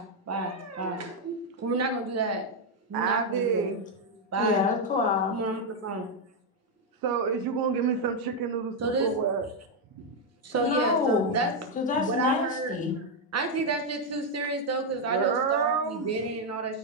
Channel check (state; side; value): normal; both; correlation 0.01